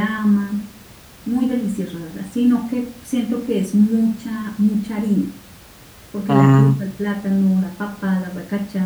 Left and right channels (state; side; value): identical; both; correlation 1.00